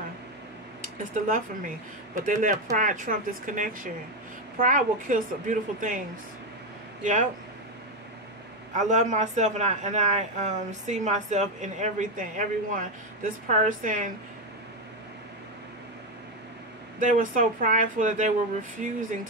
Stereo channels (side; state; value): both; normal; correlation 0.09